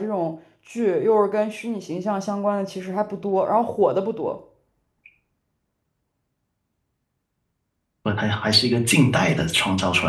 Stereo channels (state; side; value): identical; both; correlation 1.00